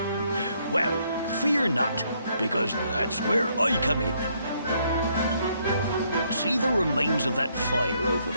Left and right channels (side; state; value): both; inverted; correlation -0.71